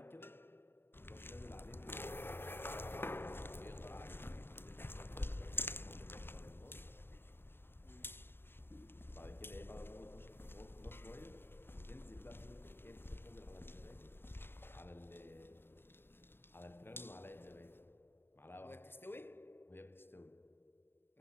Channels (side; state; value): right; late; 0.11 ms